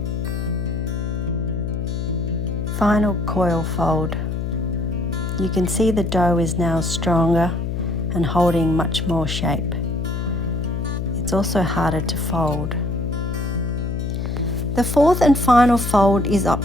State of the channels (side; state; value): left; noise; hum, 2 dB below the sound